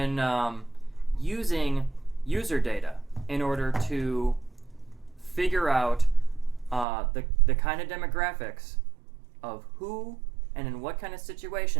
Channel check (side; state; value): left; drops out; at 6.9 s